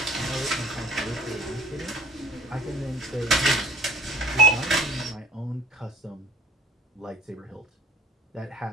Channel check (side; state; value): both; normal; correlation 0.49